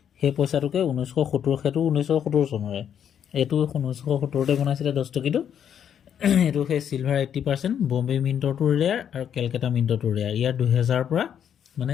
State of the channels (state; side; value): quieter; right; 8.8 dB